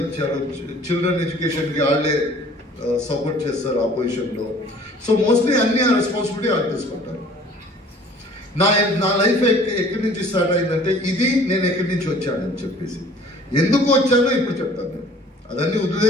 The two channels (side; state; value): both; normal; correlation 0.52